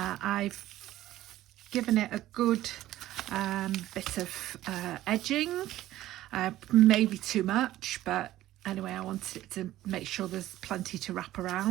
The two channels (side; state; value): left; quieter; 14.6 dB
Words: given it a good bit of edging, maybe too much, but anyway, I wanted it to make sure there's plenty to wrap